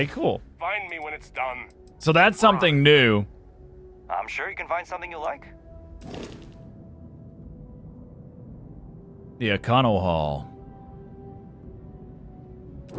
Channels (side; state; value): both; identical; correlation 1.00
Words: cool. Find me when it's done. So that's something new. I'm sure you can find something you like. The Econo Hall.